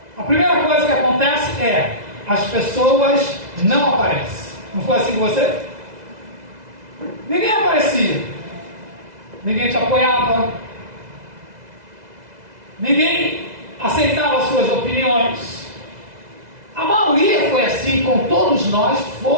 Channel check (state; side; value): late; left; 2.0 ms